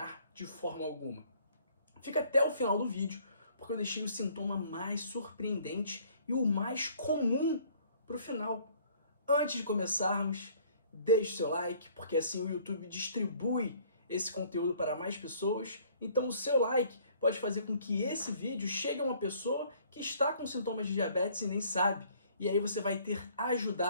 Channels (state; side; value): inverted; both; correlation -0.57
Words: de forma alguma. Fica até o final do vídeo, porque eu deixei o sintoma mais surpreendente e o mais comum para o final. Antes de começarmos, deixe seu like, porque assim o YouTube distribui esse conteúdo para mais pessoas. Então o seu like pode fazer com que esse vídeo chegue a uma pessoa que está com sintomas de diabetes e nem sabe. E aí você vai ter